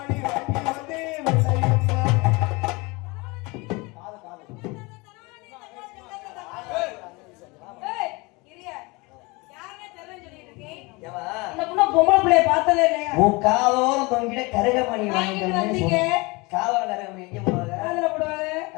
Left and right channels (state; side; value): quieter; right; 25.7 dB